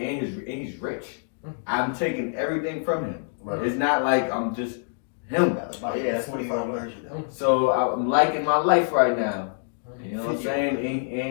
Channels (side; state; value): right; silent; digital silence